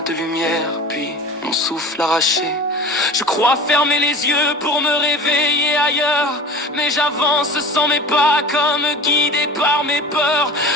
de lumière, puis mon souffle arraché. Je crois fermer les yeux pour me réveiller ailleurs, mais j'avance sans mes pas comme guidé par mes peurs.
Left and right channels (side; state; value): both; normal; correlation 0.37